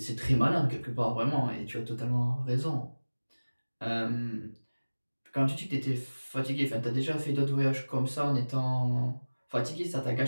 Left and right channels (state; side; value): inverted; both; correlation -1.00